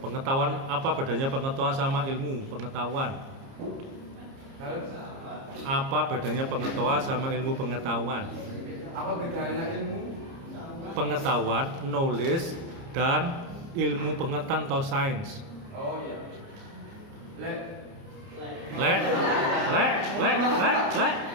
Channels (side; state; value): left; late; 30 ms